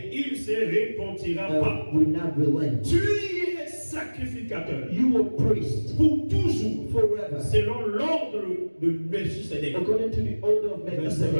il ne se repentira pas. will not relent. Tu es sacrificateur You are priest pour toujours, forever. selon l'ordre de Melchizedek. According to the order of Verset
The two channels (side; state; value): both; inverted; correlation -1.00